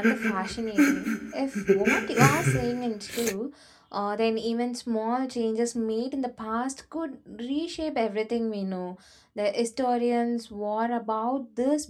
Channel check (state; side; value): identical; both; correlation 1.00